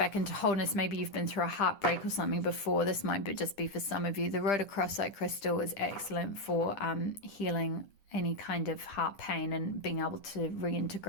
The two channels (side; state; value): right; late; 10 ms